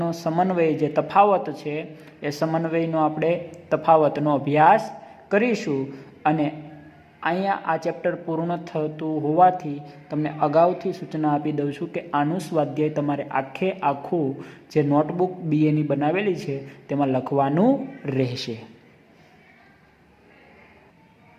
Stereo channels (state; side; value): identical; both; correlation 1.00